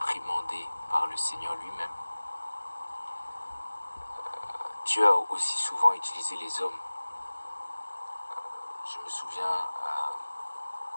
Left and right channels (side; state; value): both; inverted; correlation -1.00